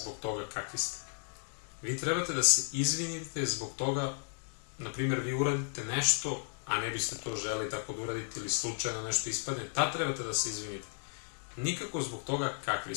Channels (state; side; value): silent; right; 55 dB below the other